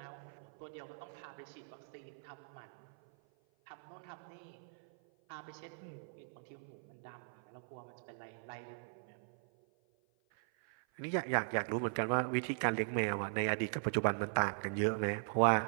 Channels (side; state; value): left; silent; 51 dB below the other